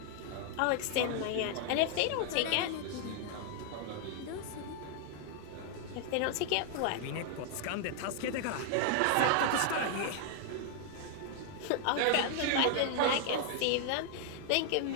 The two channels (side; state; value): both; different; correlation 0.00